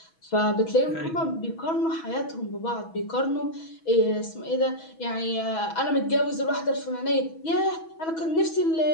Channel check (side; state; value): right; late; 6.2 ms